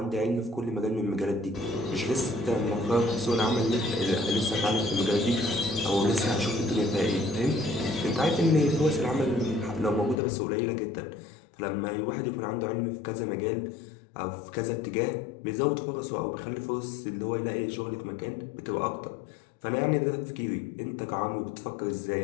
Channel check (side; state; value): right; drops out; at 10.2 s